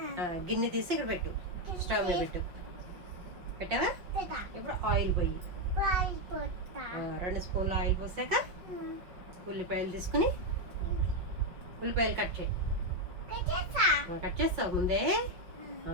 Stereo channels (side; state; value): left; late; 5.4 ms